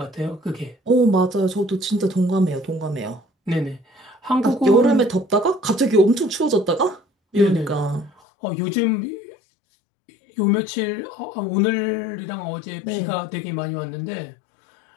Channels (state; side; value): drops out; right; at 8.1 s